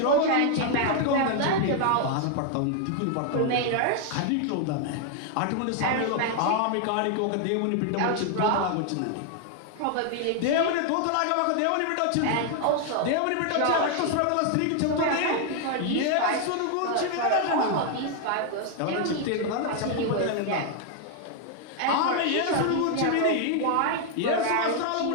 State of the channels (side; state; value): both; different; correlation 0.00